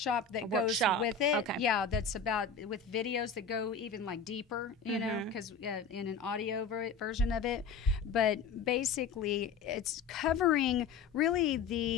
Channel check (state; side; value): quieter; right; 5.1 dB